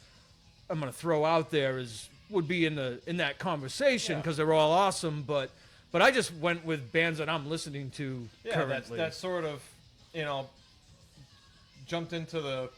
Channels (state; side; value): identical; both; correlation 1.00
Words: throw out there would be in that conversation because they're all awesome. But I just went with bands that I'm listening to currently. That sort of jumped into the